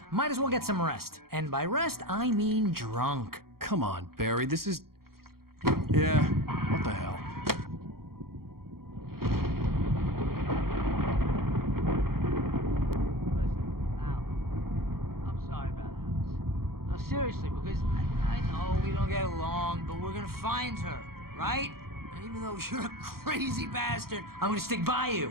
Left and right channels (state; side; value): late; left; 0.93 ms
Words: Might as well get some rest. And by rest, I mean drunk. Come on, Barry, this is... Yeah, what the hell? Seriously, because I know we don't get along, but we're gonna find her, right? And even though you're a crazy bastard, I'm gonna stick by you,